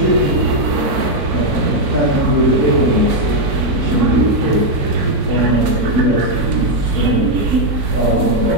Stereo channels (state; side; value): late; left; 4.5 ms